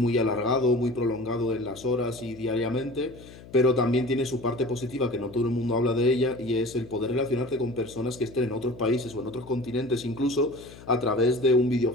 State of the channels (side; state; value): left; noise; hum, 19 dB below the sound